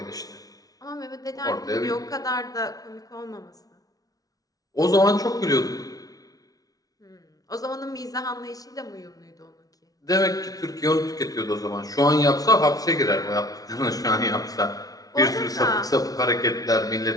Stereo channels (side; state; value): right; late; 0.18 ms